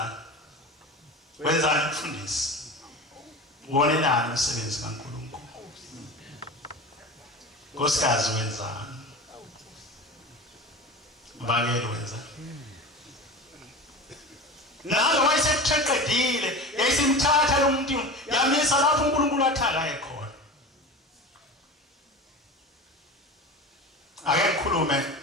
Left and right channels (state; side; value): normal; both; correlation 0.31